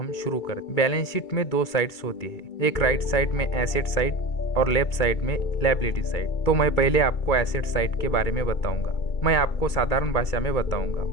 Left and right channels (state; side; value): late; right; 2.3 ms